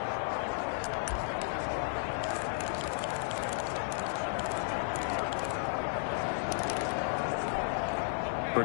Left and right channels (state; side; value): silent; right; digital silence